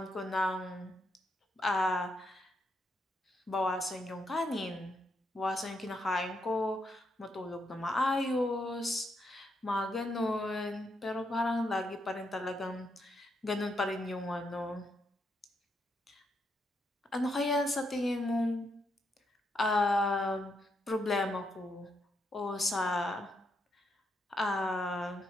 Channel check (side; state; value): both; normal; correlation 0.79